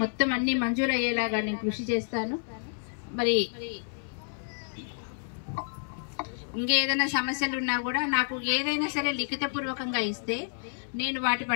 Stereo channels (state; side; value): silent; right; 58 dB below the other